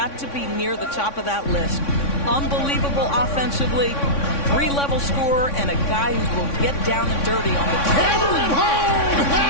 to be near the top of that list. Unbelievable offensively, 3-level scorer, and a guy who will get down and dirty on the table. Hammer it home!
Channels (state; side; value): late; right; 3.6 ms